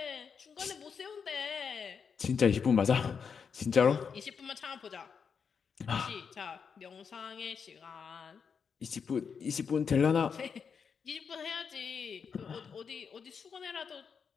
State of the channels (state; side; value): quieter; right; 6.3 dB